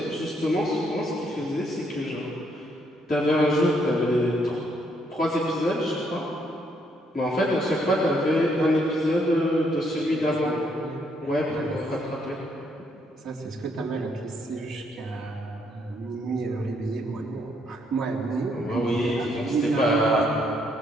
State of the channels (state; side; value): normal; both; correlation 0.72